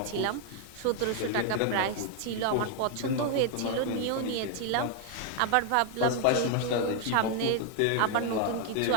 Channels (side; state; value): both; different; correlation 0.00